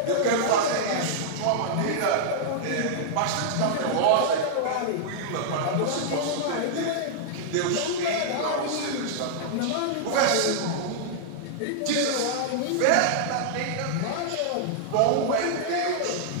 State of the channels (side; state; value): both; different; correlation -0.01